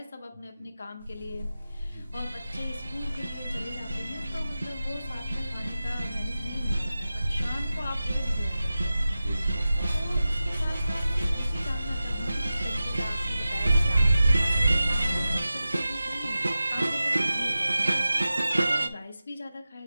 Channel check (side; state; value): both; inverted; correlation -0.94